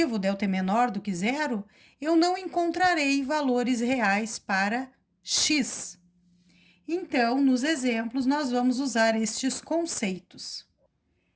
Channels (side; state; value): both; identical; correlation 1.00